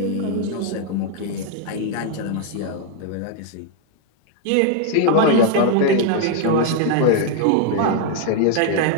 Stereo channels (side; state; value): both; different; correlation 0.00